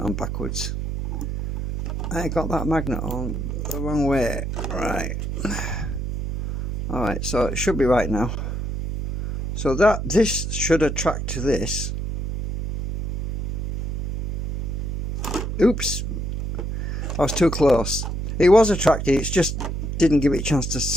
on backwards. I got that magnet on the wrong way. Right. Alright, so it should be right now. So this should attract to this. Oops. I was too close. It was attracted, it just didn't give it a chance to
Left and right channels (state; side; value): noise; right; hum, 3 dB below the sound